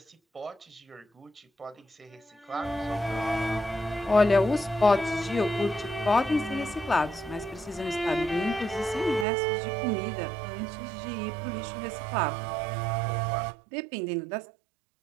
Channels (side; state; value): left; drops out; at 9.2 s